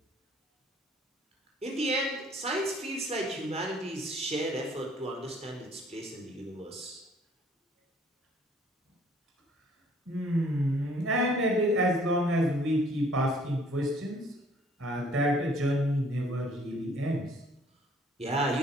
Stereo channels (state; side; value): normal; both; correlation 0.59